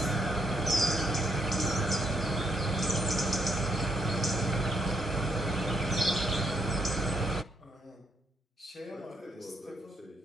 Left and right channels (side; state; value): both; normal; correlation 0.76